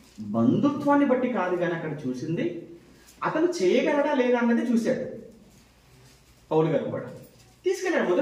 బంధుత్వాన్ని బట్టి కాదు కానీ అక్కడ చూసింది అతను చేయగలడా లేదా అన్నది చూశాడు. పౌలు గారు కూడా తీసుకెళ్ళాడు,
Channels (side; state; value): both; identical; correlation 1.00